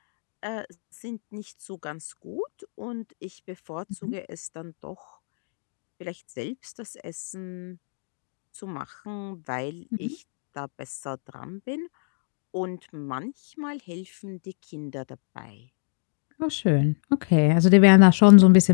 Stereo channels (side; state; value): right; silent; digital silence